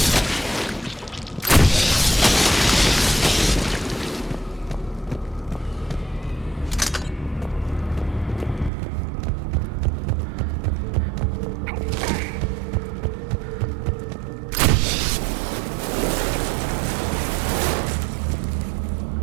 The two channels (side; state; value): left; drops out; at 8.7 s